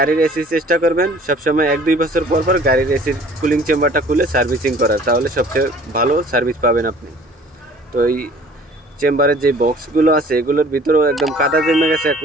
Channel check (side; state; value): both; normal; correlation 0.51